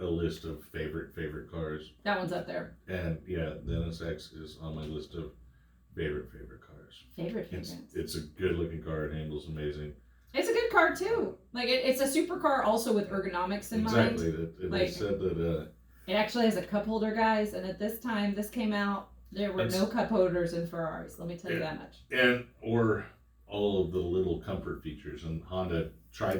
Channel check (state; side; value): identical; both; correlation 1.00